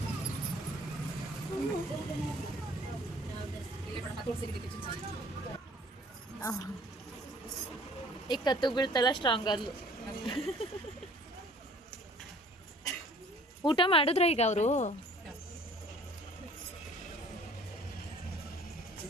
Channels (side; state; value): both; normal; correlation 0.53